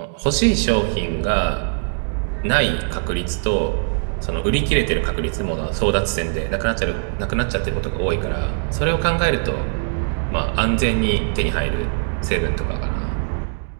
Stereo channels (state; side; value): silent; left; digital silence